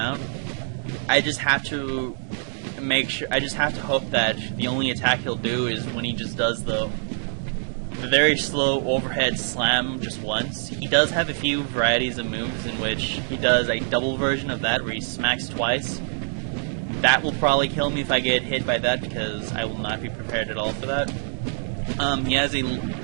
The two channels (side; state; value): left; silent; digital silence